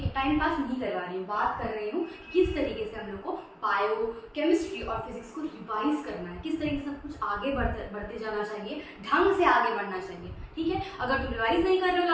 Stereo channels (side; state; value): both; identical; correlation 1.00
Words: है, टाइम पास नहीं करवा रही हूँ, बात कर रही हूँ किस तरीके से हम लोग को बायो, केमिस्ट्री और फिजिक्स को रिवाइज करना है, किस तरीके से सब कुछ आगे बढ़ते जाना चाहिए, ढंग से आगे बढ़ना चाहिए। ठीक है, अगर तुम रिवाइज नहीं कर रहे हो